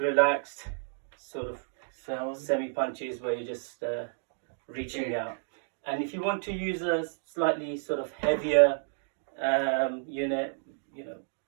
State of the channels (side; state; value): left; silent; digital silence